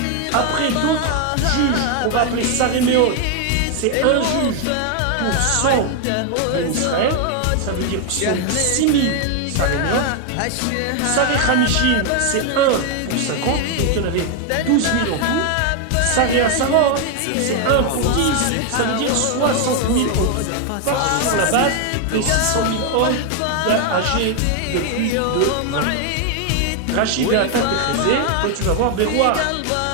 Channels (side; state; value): both; different; correlation 0.01